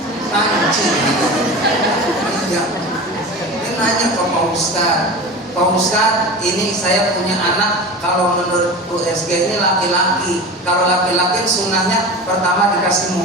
Panci. Iya. Dia nanya ke Pak Ustadz, Pak Ustadz, ini saya punya anak, kalau menurut USG ini laki-laki. Kalau laki-laki sunnahnya pertama dikasih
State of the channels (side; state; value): both; normal; correlation 0.31